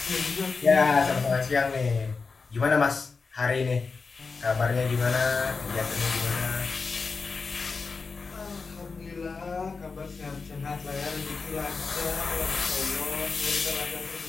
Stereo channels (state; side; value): quieter; right; 4.6 dB